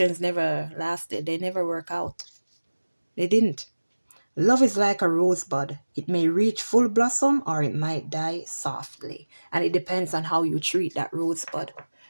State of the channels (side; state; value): both; inverted; correlation -1.00